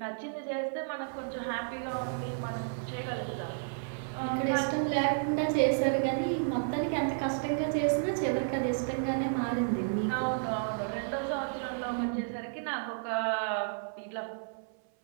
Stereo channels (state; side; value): silent; left; 56 dB below the other